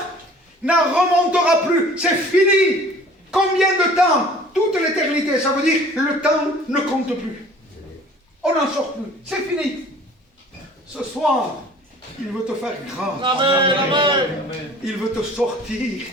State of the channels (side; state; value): both; normal; correlation 0.49